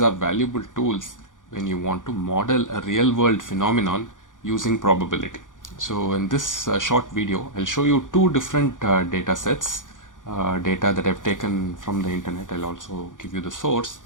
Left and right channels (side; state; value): right; late; 0.88 ms